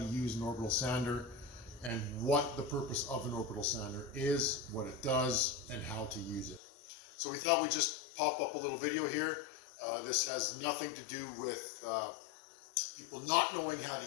use an orbital sander and what the purpose of an orbital sander is, what it does, and how to use it. So we thought we'd just pop up a little video here. This has nothing to do with people not knowing how to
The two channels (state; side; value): drops out; right; at 6.6 s